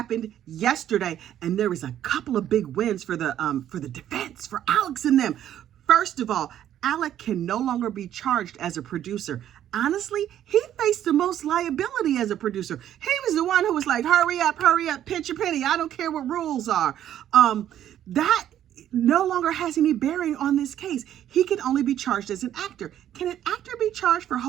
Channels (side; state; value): left; quieter; 11.1 dB